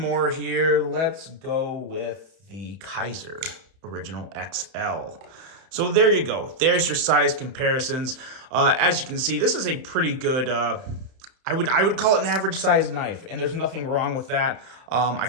here. Let's go with the Kaiser Original XL. So there you go. There's your size comparisons. As you can see, this is a pretty good, I would call it an average size knife, and there's nothing wrong with that. I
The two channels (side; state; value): left; late; 31 ms